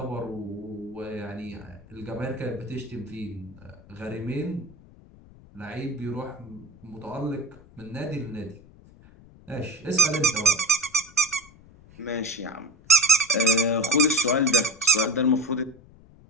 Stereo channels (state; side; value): noise; left; rumble, 24 dB below the sound